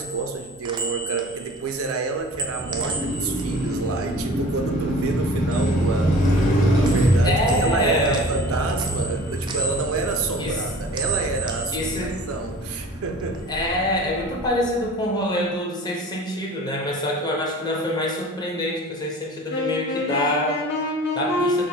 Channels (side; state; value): both; normal; correlation 0.42